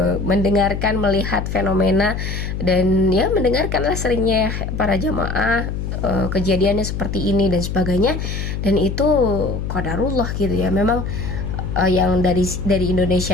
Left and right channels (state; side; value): noise; left; hum, 4 dB below the sound